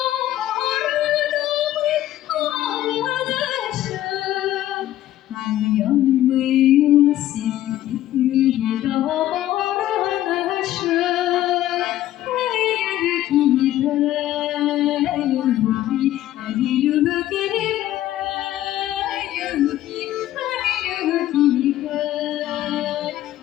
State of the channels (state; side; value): quieter; right; 13.7 dB